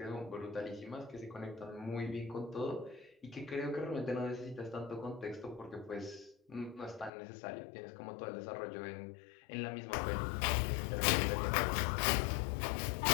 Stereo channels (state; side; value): drops out; right; at 7.1 s